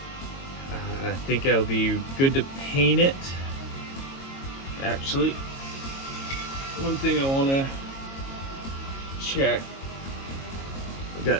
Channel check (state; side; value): late; right; 22 ms